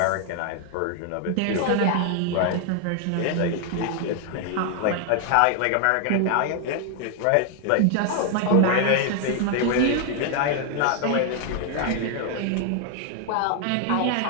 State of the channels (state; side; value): different; both; correlation 0.00